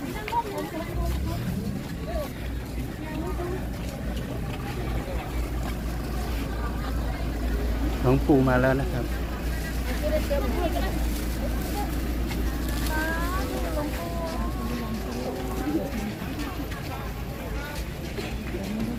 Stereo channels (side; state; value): both; identical; correlation 1.00